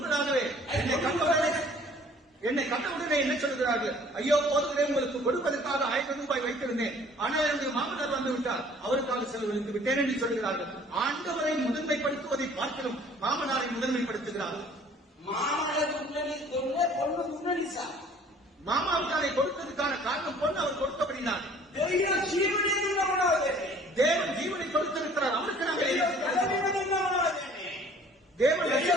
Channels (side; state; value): both; normal; correlation 0.53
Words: என்னை கண்டவுடனே என்ன சொல்கிறார்கள்? ஐயோ போதவரே உங்களுக்கு கொடுப்பதற்காக 1000 ரூபாய் வைத்திருந்தேன், ஆனால் என்னுடைய மாமனார் வந்து விட்டார், அவருக்காக செலவழித்து விட்டேன் என்று சொல்கிறார்கள். ஆண்டவரை முதன்மைப்படுத்துவதை பார்க்கணும் மாமனாரை முதன்மைப்படுத்துகிறார்கள். மாமாவுக்காரை கொடுத்ததுக்கான காரணம் பொண்ணு அவர் கொடுத்தபடினார். தேவன் ஜீவனை கொடுத்திருக்கிறார், அவருக்கு நாங்கள்